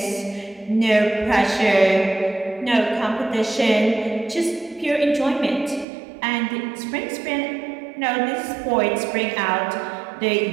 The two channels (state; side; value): drops out; left; at 5.9 s